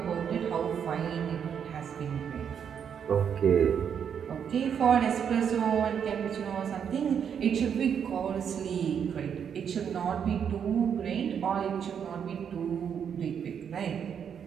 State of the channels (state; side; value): quieter; left; 7.8 dB